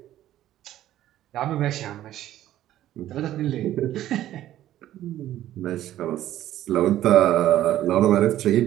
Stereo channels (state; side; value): quieter; left; 13.1 dB